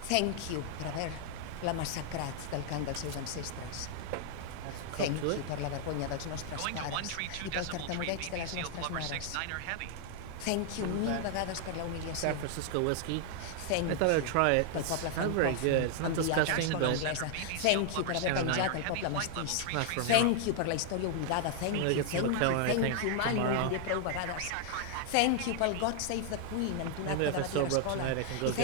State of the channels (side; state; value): both; different; correlation 0.00